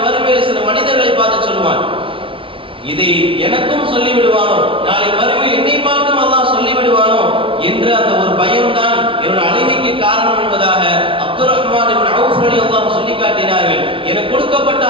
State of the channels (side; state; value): left; late; 0.25 ms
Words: மறுமையில் சில மனிதர்களை பார்த்து சொல்லுவான். இதை எனக்கும் சொல்லிவிடுவானோ, நாளை மறுமையில் என்னை பார்த்தும் அல்லாஹ் சொல்லிவிடுவானோ என்ற அந்த ஒரு பயம்தான் என்னோட அழுகைக்கு காரணம் என்பதாக அப்துர் ரஹ்மான் இப்னு அவுஃப் ரலியல்லாஹு சொல்லி காட்டினார்கள். எனக்கு கொடுக்கப்பட்ட